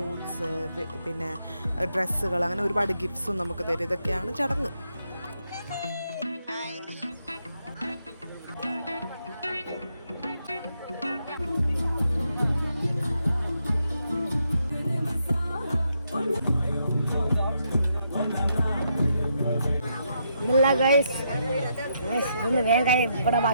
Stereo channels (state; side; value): inverted; both; correlation -0.79